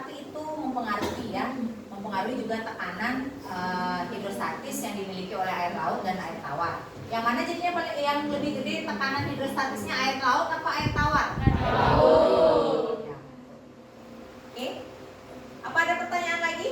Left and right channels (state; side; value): identical; both; correlation 1.00